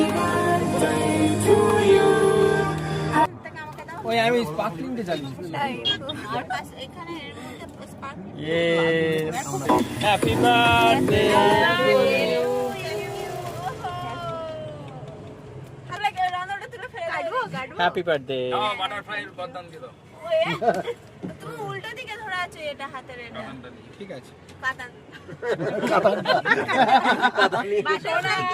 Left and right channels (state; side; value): identical; both; correlation 1.00